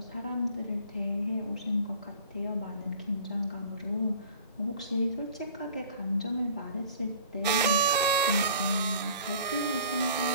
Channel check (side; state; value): both; inverted; correlation -0.47